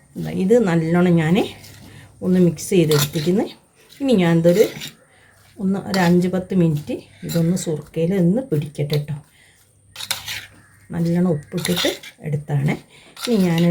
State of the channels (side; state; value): both; identical; correlation 1.00